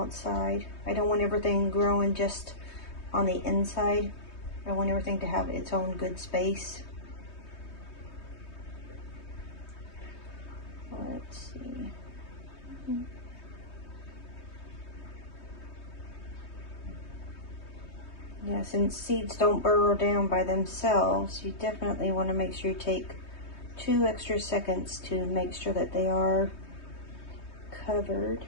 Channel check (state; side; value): late; right; 3.2 ms